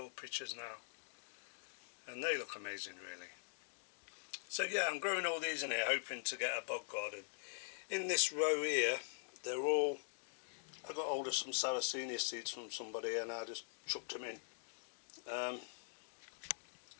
pitchers now, and they look amazing really. So yeah, I'm growing all these in here hoping to get a bog garden. In this row here, they're all, I got hold of some Sarracenia seeds from somebody and I just chucked them in.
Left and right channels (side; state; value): right; silent; digital silence